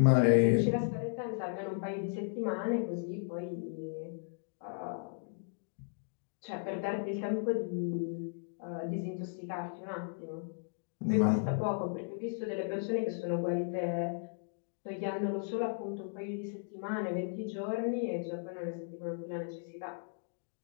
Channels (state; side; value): silent; right; digital silence